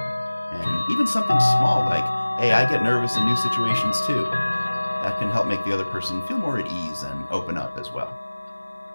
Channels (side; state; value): both; inverted; correlation -1.00